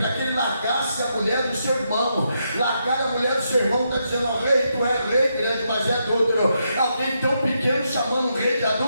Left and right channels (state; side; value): inverted; both; correlation -0.81